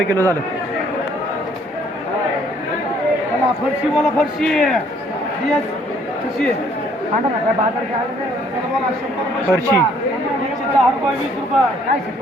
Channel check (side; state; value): both; normal; correlation 0.63